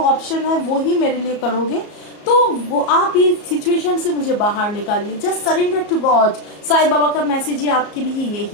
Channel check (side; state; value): right; late; 34 ms